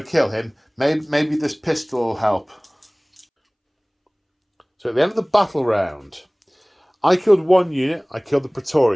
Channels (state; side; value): identical; both; correlation 1.00